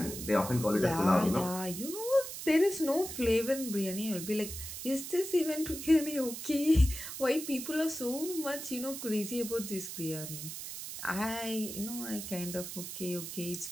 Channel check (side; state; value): right; noise; hiss, 8 dB below the sound